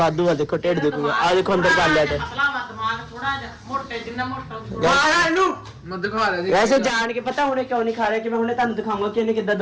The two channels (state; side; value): identical; both; correlation 1.00